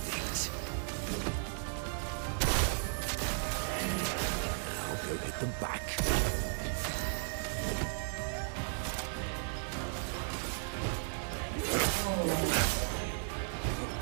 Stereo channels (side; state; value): left; silent; 54 dB below the other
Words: Now go hit them back.